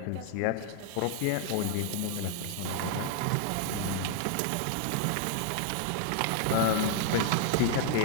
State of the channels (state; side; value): different; both; correlation 0.00